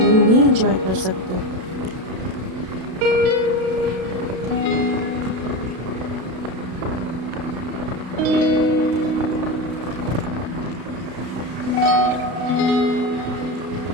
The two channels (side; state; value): left; late; 32 ms